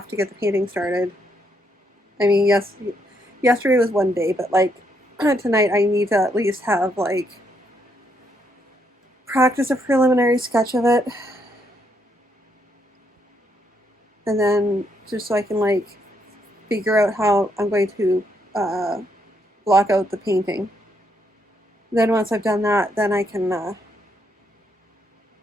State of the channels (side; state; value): both; normal; correlation 0.75